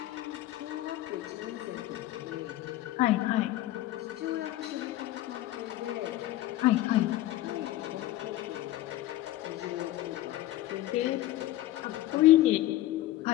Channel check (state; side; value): quieter; right; 15.4 dB